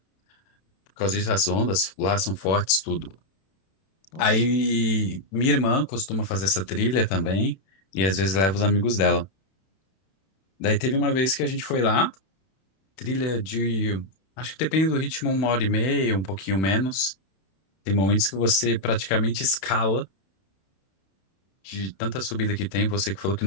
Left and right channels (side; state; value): right; late; 31 ms